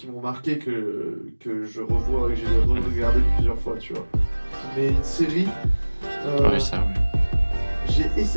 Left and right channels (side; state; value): both; inverted; correlation -1.00